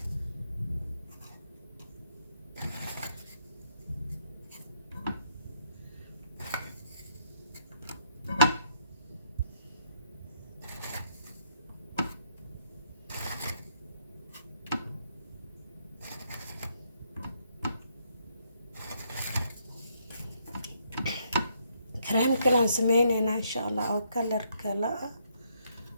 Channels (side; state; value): both; inverted; correlation -0.72